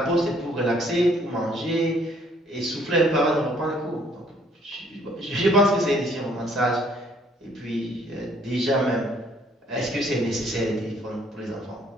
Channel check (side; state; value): both; normal; correlation 0.63